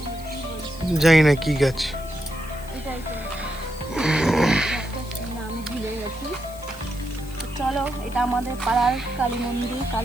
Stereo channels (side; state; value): left; noise; hiss, 19 dB below the sound